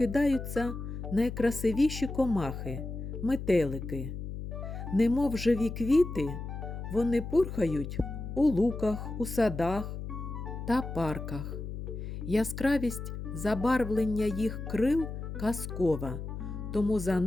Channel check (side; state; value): left; noise; hum, 7 dB below the sound